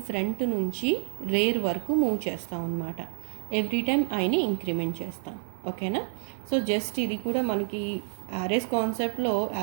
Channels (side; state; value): left; silent; 59 dB below the other